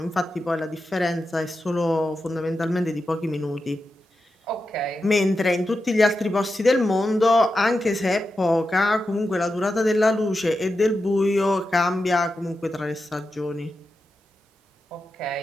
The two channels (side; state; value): both; normal; correlation 0.90